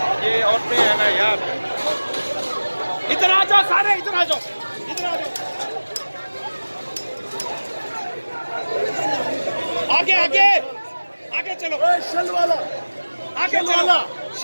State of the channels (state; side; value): inverted; both; correlation -1.00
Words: ये औरतें है ना यार, इधर आ जाओ सारे, इधर आ जाओ, इधर आ जाओ, आगे आगे आगे चलो। शेल वाला आगे चलो,